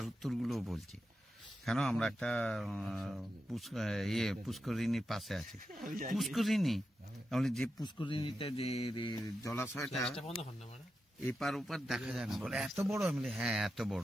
উত্তরগুলো বলছি। কেন আমরা একটা পুষ্করিণীর পাশে আছি। পুষ্করিণী তাহলে যে পুষ্করিণীটা যে জলাশয়টা এপার ওপার দেখা যায় না বলে এত বড়। আমি হ্যাঁ এত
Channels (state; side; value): normal; both; correlation 0.89